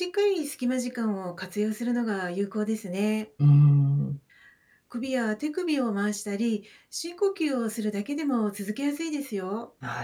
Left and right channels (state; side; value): identical; both; correlation 1.00